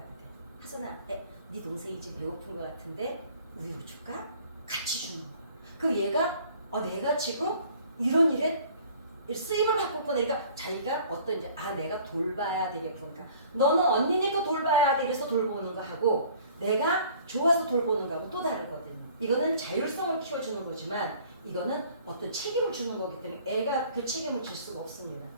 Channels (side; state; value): both; inverted; correlation -0.52